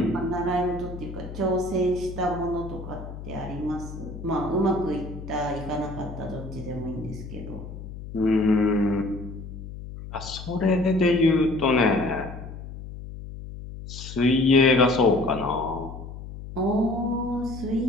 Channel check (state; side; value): noise; left; hum, 11 dB below the sound